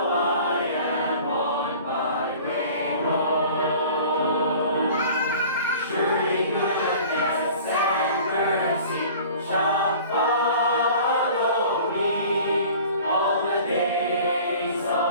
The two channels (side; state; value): both; inverted; correlation -0.45